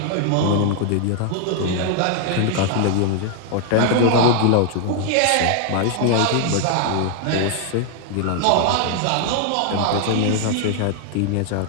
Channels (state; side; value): different; both; correlation 0.00